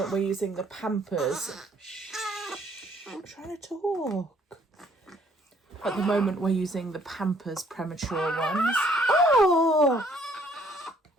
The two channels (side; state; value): both; normal; correlation 0.63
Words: we're using the Pampers. Shh, I'm trying to talk. At the moment, we're using the Pampers premature ones. Oh!